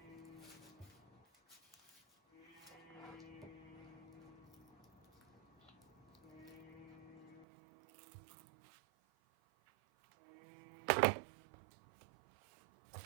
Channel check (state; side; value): drops out; left; at 7.5 s